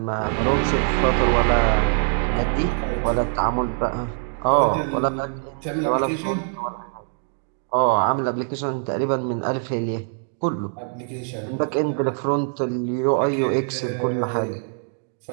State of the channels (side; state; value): left; silent; 63 dB below the other